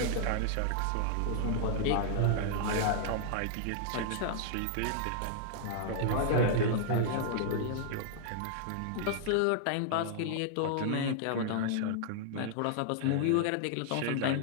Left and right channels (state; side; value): different; both; correlation -0.01